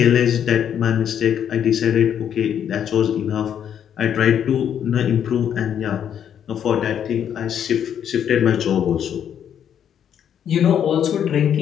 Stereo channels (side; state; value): right; quieter; 9.1 dB